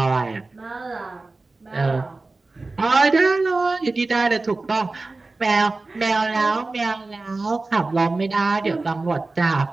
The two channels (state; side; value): quieter; left; 3.4 dB